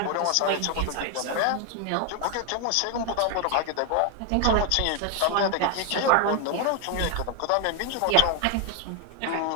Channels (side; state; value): both; different; correlation 0.01